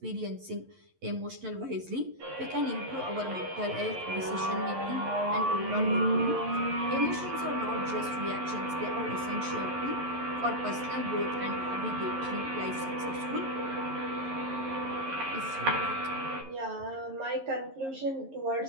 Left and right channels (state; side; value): late; left; 11 ms